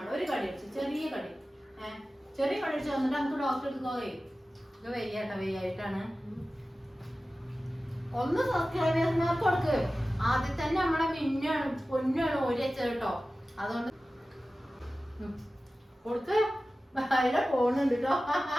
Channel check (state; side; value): normal; both; correlation 0.96